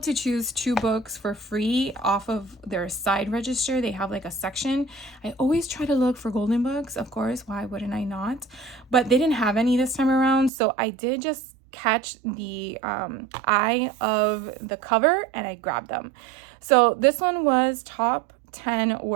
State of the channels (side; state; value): left; drops out; at 10.5 s